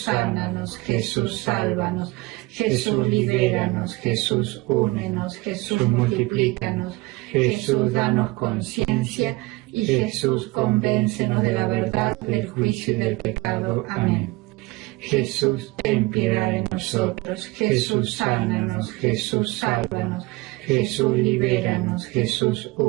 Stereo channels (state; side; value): quieter; left; 22.2 dB